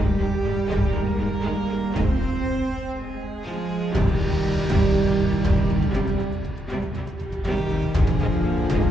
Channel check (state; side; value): normal; both; correlation 0.81